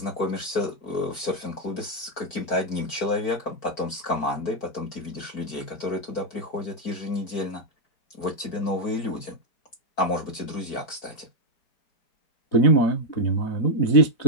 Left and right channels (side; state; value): right; late; 4.5 ms